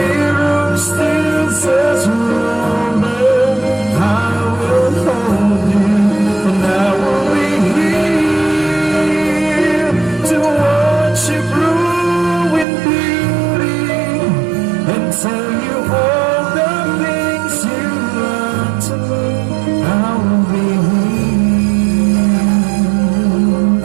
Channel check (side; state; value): left; drops out; at 12.7 s